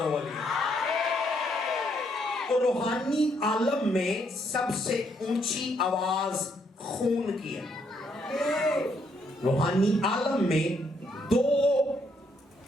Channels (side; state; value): both; normal; correlation 0.73